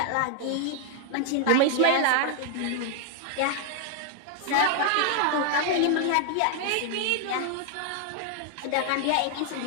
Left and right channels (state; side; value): different; both; correlation 0.00